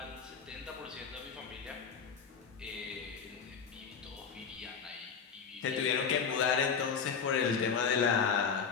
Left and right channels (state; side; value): quieter; right; 6.3 dB